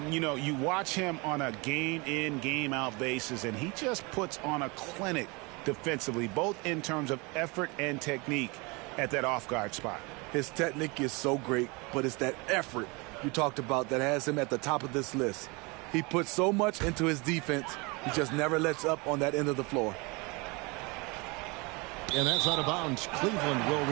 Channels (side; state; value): left; quieter; 27.6 dB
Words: You know, you watch him on a game-in, game-out basis, and he just puts on a clinic defensively, both in terms of effort and technique at that off-guard spot. His technique is so great, but it's that effort you talked about that has him at the top of this list. He puts so much into his defense, he just never lets up on that end of the floor. And that's out of bounds. Cleveland will